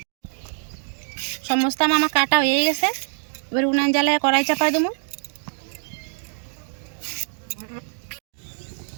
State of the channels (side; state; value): left; silent; 63 dB below the other